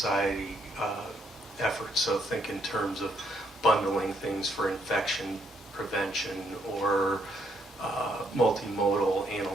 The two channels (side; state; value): both; normal; correlation 0.73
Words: efforts. So think in terms of bundling things for infection prevention or multimodal